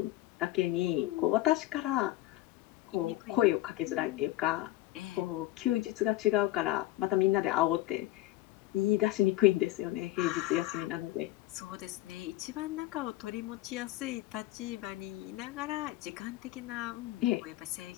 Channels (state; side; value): quieter; right; 16.6 dB